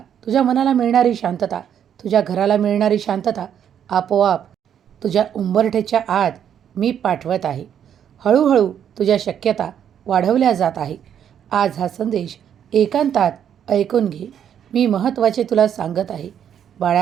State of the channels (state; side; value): quieter; left; 9.0 dB